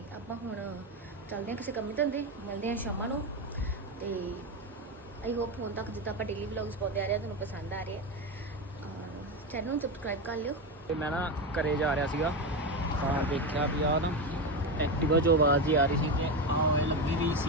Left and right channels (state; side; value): normal; both; correlation 0.15